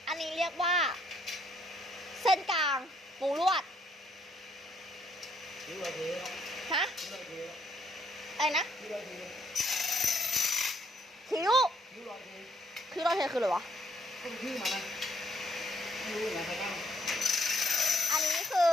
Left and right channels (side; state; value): both; normal; correlation 0.70